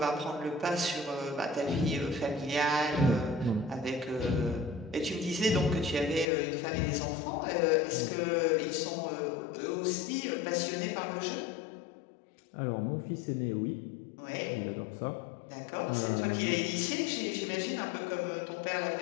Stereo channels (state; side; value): drops out; right; at 6.2 s